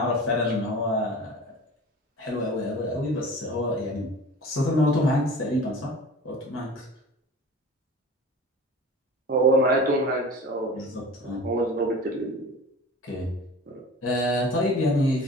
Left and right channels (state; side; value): normal; both; correlation 0.39